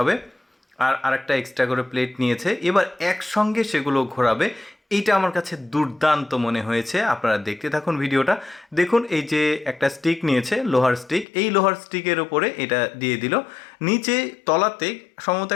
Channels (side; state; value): right; drops out; at 11.2 s